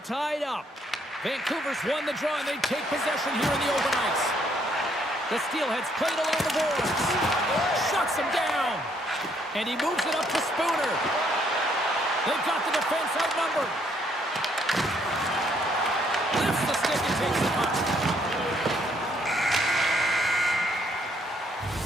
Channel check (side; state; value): both; normal; correlation 0.69